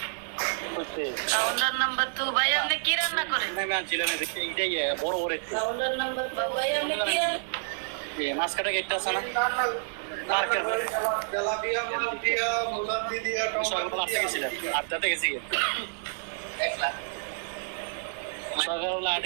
কাউন্টার নাম্বার 2 ভাই আপনি কি রান্না করেন? আমি আনছিলাম দেখি এইটাই বড় বড় একটু কাউন্টার নাম্বার 2 ভাই আপনি কি মাছ কাটা গেটটা আছে না মার্কেট তেলাপিয়া, মালপিয়া, মুলান্দি দিয়া, সকালবেলা আসতে গেছিলাম, আড্ডাতে গেছি সকালবেলা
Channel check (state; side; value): silent; left; digital silence